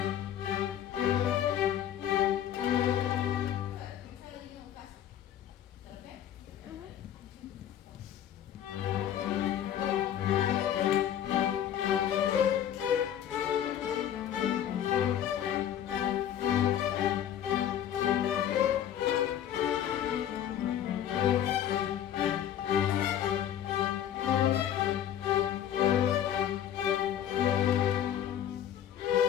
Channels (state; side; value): quieter; right; 10.4 dB